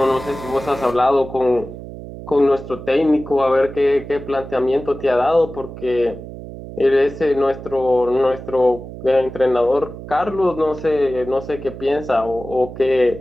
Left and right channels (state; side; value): noise; right; hum, 12 dB below the sound